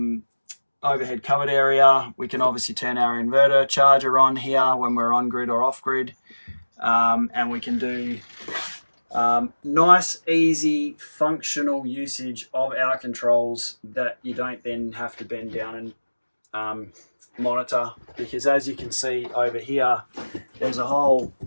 overhead cupboard area. We can obviously turn our inverter charger on here when we're on grid or off grid, and we can do nice, easy, functional usage of our controls that you don't then have to bend down and monitor, because as you can see over here, there's a hole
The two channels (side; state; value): both; inverted; correlation -1.00